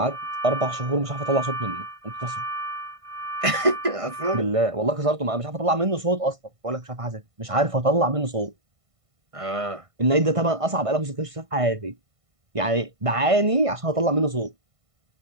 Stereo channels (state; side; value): late; left; 1.5 ms